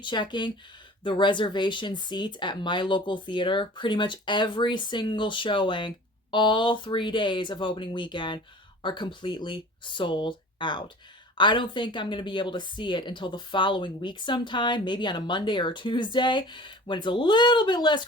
checking the reservation seats at my local theater. Pretty much every single showing, all 3 days of opening weekend, are completely sold out. I don't think I'm going to be able to see it until the following week sometime, maybe on a Monday or a Tuesday, when it's a little bit less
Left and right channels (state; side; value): normal; both; correlation 0.42